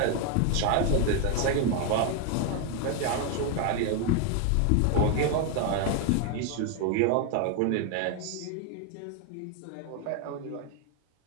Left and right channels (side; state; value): both; different; correlation 0.01